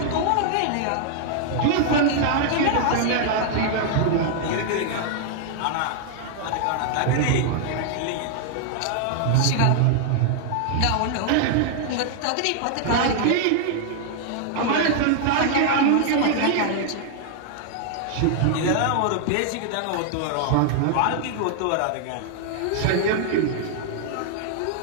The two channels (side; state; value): both; different; correlation 0.00